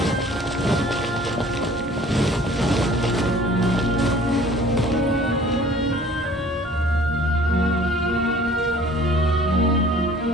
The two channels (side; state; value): both; normal; correlation 0.51